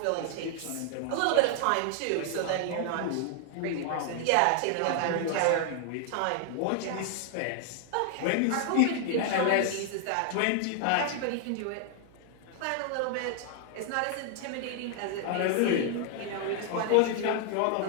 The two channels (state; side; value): different; both; correlation 0.00